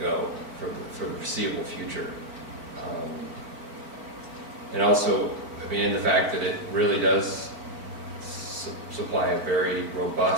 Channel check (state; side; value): late; left; 4.5 ms